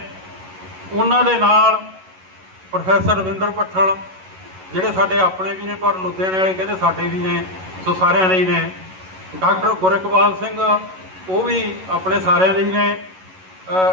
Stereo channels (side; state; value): left; late; 11 ms